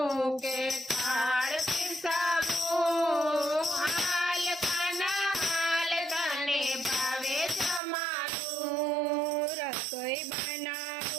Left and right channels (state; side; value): drops out; left; at 7.8 s